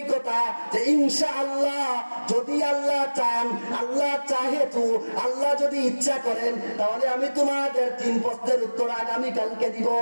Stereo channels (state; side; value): inverted; both; correlation -1.00